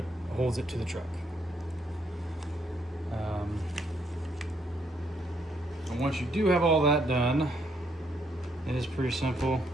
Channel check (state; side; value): normal; both; correlation 0.72